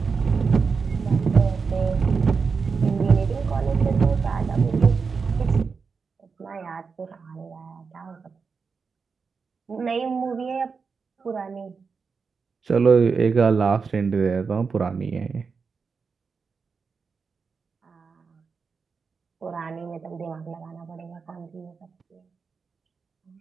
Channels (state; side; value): quieter; left; 5.2 dB